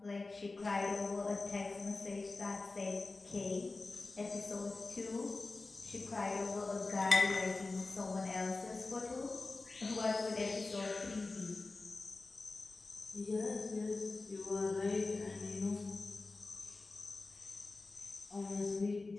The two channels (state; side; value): quieter; right; 3.5 dB